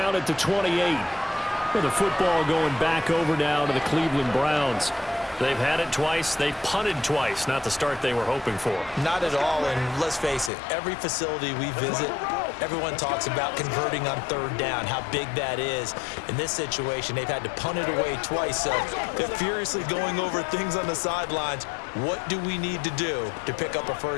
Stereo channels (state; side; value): drops out; right; at 10.5 s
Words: at the 28. With the football going back over now to the Cleveland Browns. They've had it twice. They've punted twice. Not the start they were hoping for. Not at all, and let's face it, every facility we visit, everyone talks about converting on 3rd down, how big that is. In this situation, they've had to punt it away twice, so they're furiously going over things on the sidelines. What do we need to do to pick up a